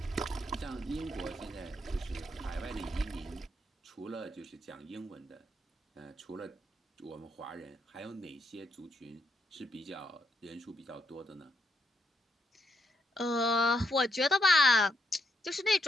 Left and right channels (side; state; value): both; normal; correlation 0.78